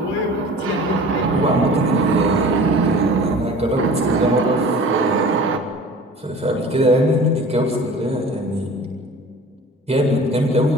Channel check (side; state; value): both; normal; correlation 0.43